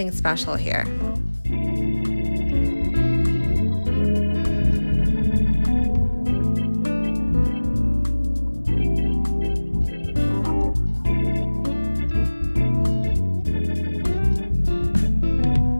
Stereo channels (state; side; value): inverted; both; correlation -1.00